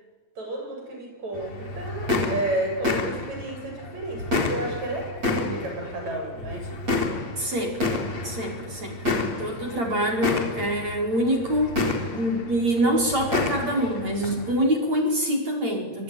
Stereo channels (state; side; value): late; left; 8.8 ms